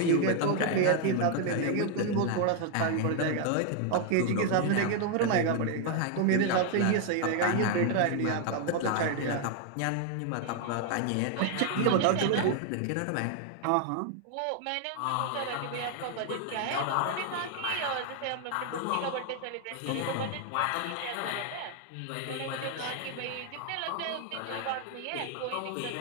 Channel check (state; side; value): different; both; correlation 0.00